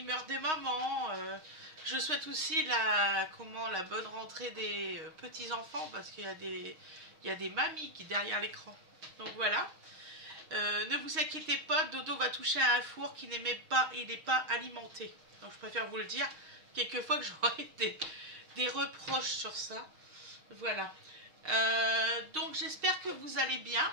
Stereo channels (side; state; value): left; late; 6.4 ms